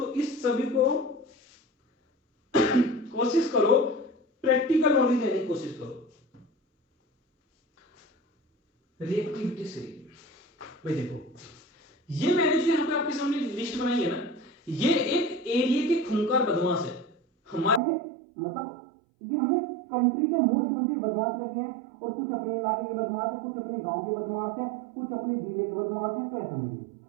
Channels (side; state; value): left; drops out; at 17.8 s